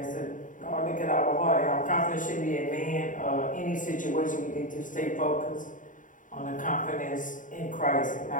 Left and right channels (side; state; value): right; late; 0.38 ms